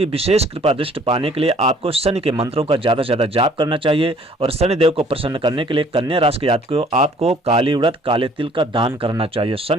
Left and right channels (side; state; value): both; normal; correlation 0.57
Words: विशेष कृपा दृष्टि पाने के लिए आपको शनि के मंत्रों का ज़्यादा से ज़्यादा जाप करना चाहिए। और शनिदेव को प्रसन्न करने के लिए कन्या राशि के जातकों आपको काली उड़द, काले तिल का दान करना चाहिए।